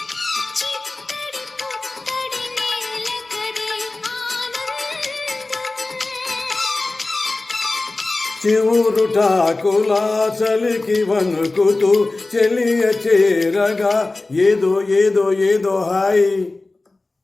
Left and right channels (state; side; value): quieter; right; 3.2 dB